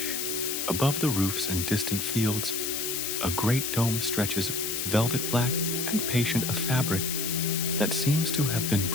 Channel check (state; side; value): noise; left; hiss, 2 dB below the sound